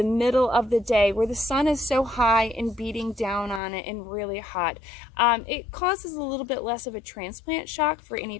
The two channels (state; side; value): drops out; right; at 3.6 s